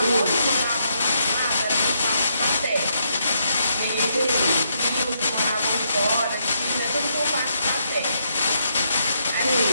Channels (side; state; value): both; inverted; correlation -0.77